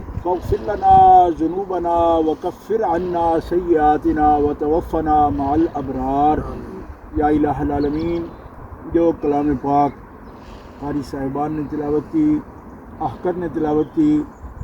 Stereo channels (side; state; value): both; identical; correlation 1.00